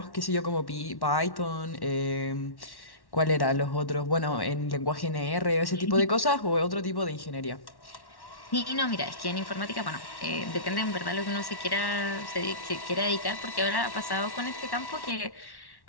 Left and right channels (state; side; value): late; right; 1.1 ms